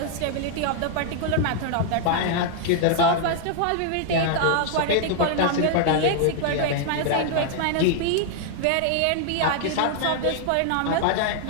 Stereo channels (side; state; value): both; different; correlation 0.00